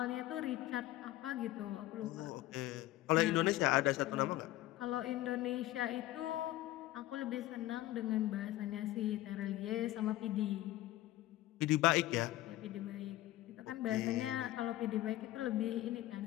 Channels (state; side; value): quieter; right; 15.7 dB